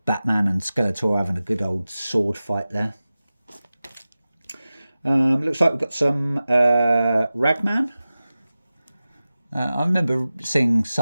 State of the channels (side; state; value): both; inverted; correlation -0.95